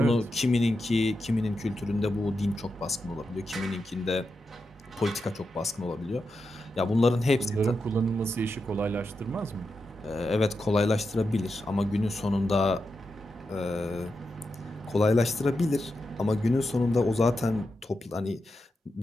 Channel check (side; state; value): both; normal; correlation 0.88